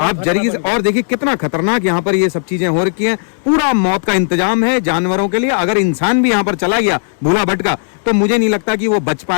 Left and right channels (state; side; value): silent; right; digital silence